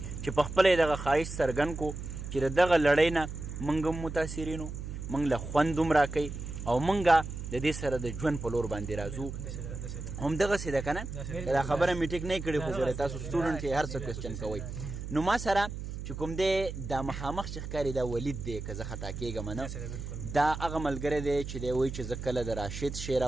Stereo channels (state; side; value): noise; right; hum, 7 dB below the sound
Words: چې په خپله یې دغه خواهش څرګند کړو چې د دغه لړۍ نه موږ هم متاثرین وو موږ له خوند هم راکوي او موږ د دې سره د ژوند په لور باندې راځو همدغسې ده که نه دا خبره مې ټیک نه کړې خو ګورئ تاسو سټوډنټ یې هر څه کوېسچن کوئ نو ما سره چې کوم دی دا مخامخ چې ښکاري دا ولید دی که زه خطا کېږم نه دا هغه ملګری دی چې دی وایي چې زه کله د راشد شعر